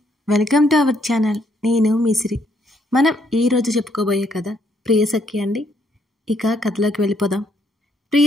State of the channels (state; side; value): normal; both; correlation 0.71